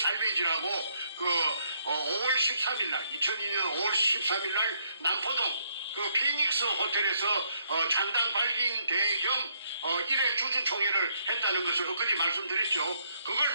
5월 13일 날, 2002년 5월 13일 날 남포동 그 피닉스 호텔에서 잔당 발긴 대겸 1회 주주총회를 했다는 것을 엊그제 말씀드렸죠. 그걸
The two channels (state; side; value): inverted; both; correlation -0.72